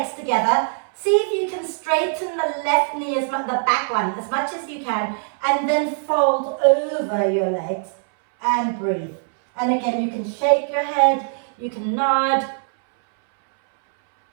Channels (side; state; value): left; silent; 64 dB below the other